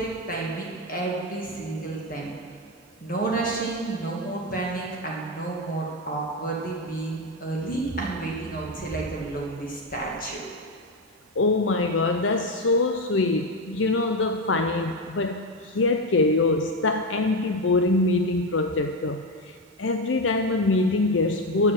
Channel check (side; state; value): both; normal; correlation 0.12